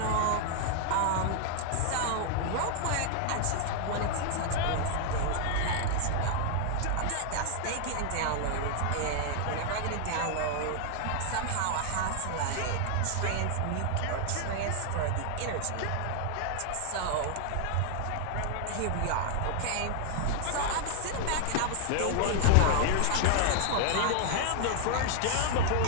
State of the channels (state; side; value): different; both; correlation 0.00